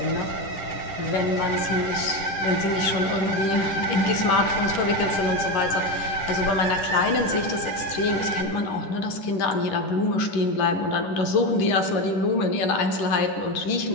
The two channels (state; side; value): late; right; 10 ms